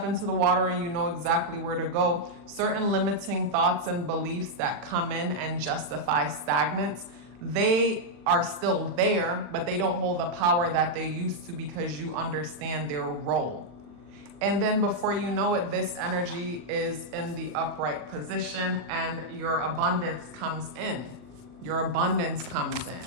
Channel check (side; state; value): left; late; 40 ms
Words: into the water and you know exactly where to go, certain limiting thoughts and beliefs that come in and justify stagnance, they are still there, but they don't hold the power that they used to, because you understand their role. And then before you know it, this energy is in the upright position and your abundance comes in. Your abundance comes